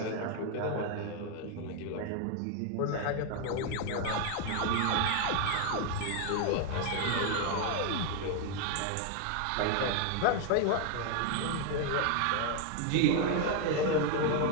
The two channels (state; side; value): different; both; correlation 0.01